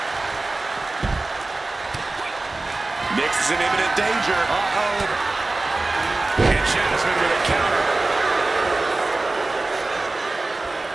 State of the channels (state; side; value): quieter; left; 3.1 dB